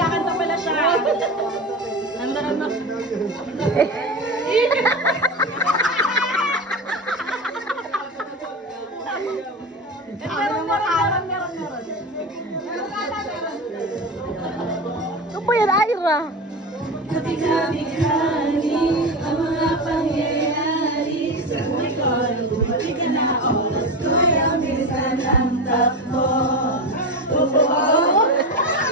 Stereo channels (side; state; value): both; normal; correlation 0.22